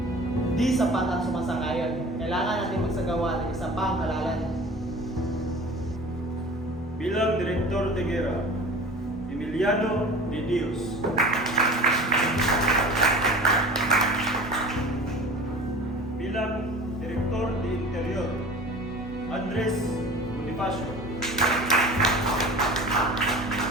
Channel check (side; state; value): both; normal; correlation 0.39